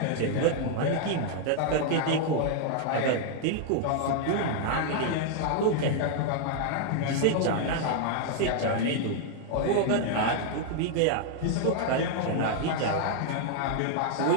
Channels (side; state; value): both; different; correlation 0.00